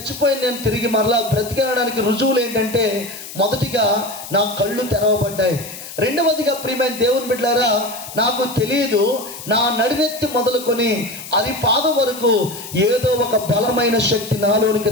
నేను తిరిగి మరలా బ్రతికేయడానికి రుజువులు ఏంటంటే మొదటిగా నా కళ్ళు తెరవబడ్డాయి. రెండవదిగా ప్రియమైన దేవుని బిడ్డలారా నాకు తెలియదు, నా నడినెత్తి మొదలుకొని అది పాదం వరకు ఏదో ఒక బలమైన శక్తి నాలోనికి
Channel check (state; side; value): noise; left; hiss, 12 dB below the sound